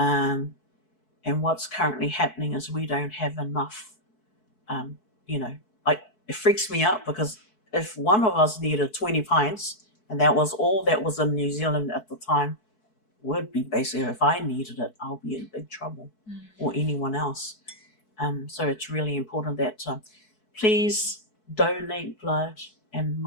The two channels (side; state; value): right; late; 4.6 ms